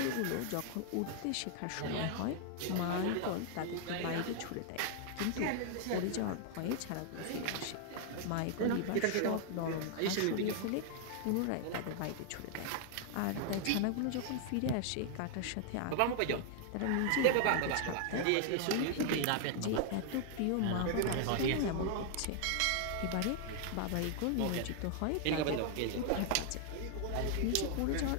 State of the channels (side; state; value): both; different; correlation 0.00